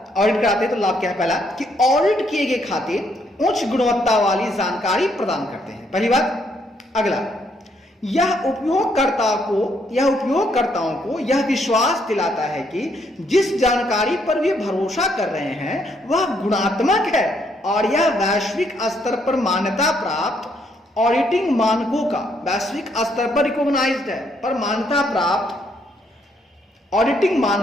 ऑडिट कराते हैं तो लाभ क्या है? पहला कि ऑडिट किए गए खाते उच्च गुणवत्ता वाली जानकारी प्रदान करते हैं, पहली बात। अगला, यह उपयोगकर्ताओं को यह विश्वास दिलाता है कि जिस जानकारी पर वे भरोसा कर रहे हैं वह गुणात्मक है और यह वैश्विक स्तर पर मान्यता प्राप्त ऑडिटिंग मानकों का, वैश्विक स्तर पर रिकॉग्नाइज्ड है, पर मान्यता प्राप्त ऑडिटिंग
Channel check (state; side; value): normal; both; correlation 0.72